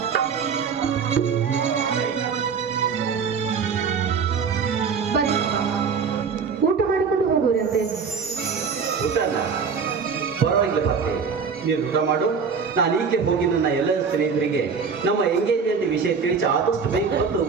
ಬನ್ನಿ, ಊಟ ಮಾಡಿಕೊಂಡು ಹೋಗುವಂತೆ. ಊಟನ ಪರವಾಗಿಲ್ಲ ಬರ್ತೆ, ನೀನು ಊಟ ಮಾಡು. ನಾನು ಈಕೆ ಹೋಗಿ ನನ್ನ ಎಲ್ಲ ಸ್ನೇಹಿತರಿಗೆ ನಮ್ಮ ಎಂಗೇಜ್ಮೆಂಟ್ ವಿಷಯ ತಿಳಿಸಿ ಆದಷ್ಟು ಬೇಗ ಬಂದು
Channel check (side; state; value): left; quieter; 5.8 dB